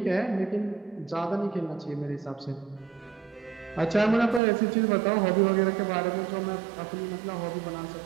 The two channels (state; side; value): drops out; left; at 4.4 s